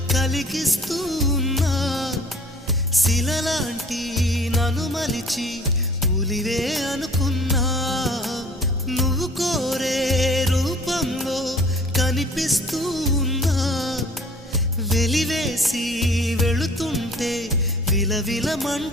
కలిగిస్తూ ఉన్నా శిలలాంటి నన్ను మలిచి ఉలివే అనుకున్నా నువ్వు కోరే రూపంలో కనిపిస్తూ ఉన్నా వెలివేసి వెళుతుంటే విలవిల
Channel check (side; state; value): both; normal; correlation 0.50